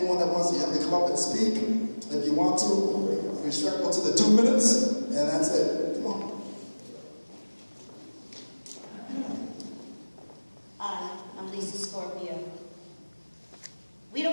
that wants to, you have to come up and speak. If you want to, respectful to the 2 minutes, and that's it. Come on. Hi, I'm Lisa Scorpio. We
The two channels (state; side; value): inverted; both; correlation -1.00